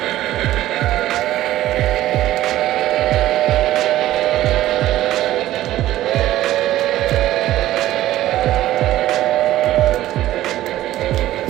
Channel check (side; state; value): left; quieter; 14.5 dB